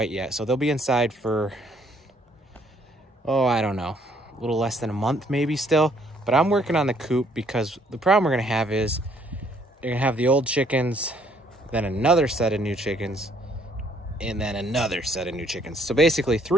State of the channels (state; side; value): normal; both; correlation 0.65